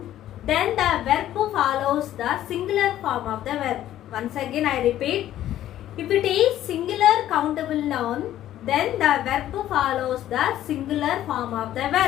then the verb follows the singular form of the verb. Once again I repeat, if it is singular countable noun, then the verb follows the singular form of the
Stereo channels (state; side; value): quieter; right; 12.6 dB